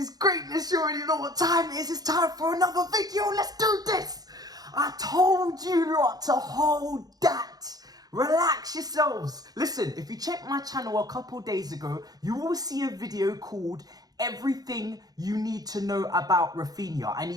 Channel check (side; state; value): left; late; 0.19 ms